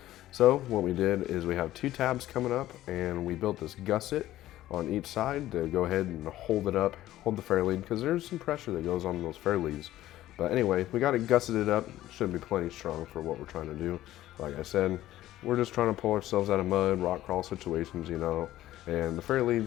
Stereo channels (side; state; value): right; quieter; 14.5 dB